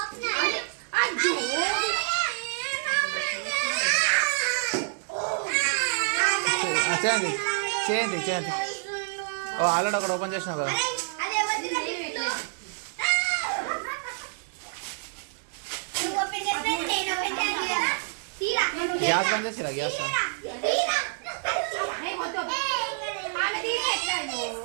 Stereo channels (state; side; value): silent; left; 57 dB below the other